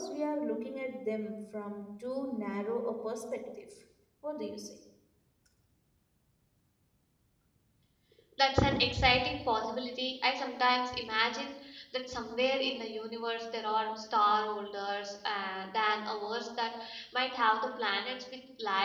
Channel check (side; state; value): both; identical; correlation 1.00